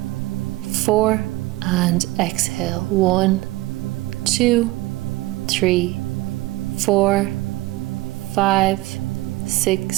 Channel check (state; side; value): quieter; left; 19.8 dB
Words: 4. And exhale. 1, 2, 3, 4, 5,